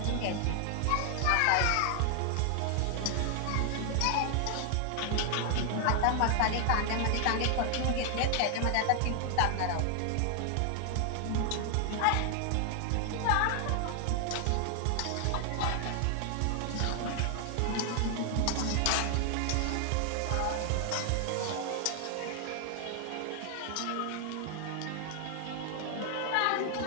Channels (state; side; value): different; both; correlation 0.00